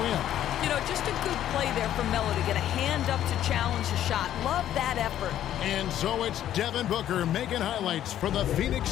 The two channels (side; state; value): right; quieter; 11.6 dB